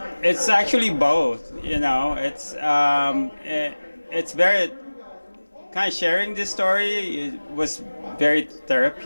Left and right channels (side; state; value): both; inverted; correlation -1.00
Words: actually both, you know. It's very kind of sharing this story. It was very